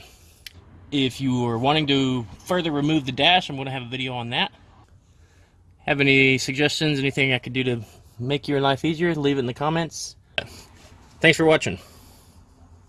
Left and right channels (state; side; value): identical; both; correlation 1.00